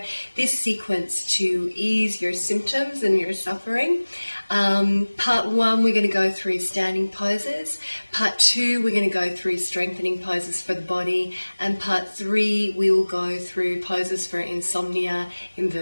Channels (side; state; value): both; inverted; correlation -1.00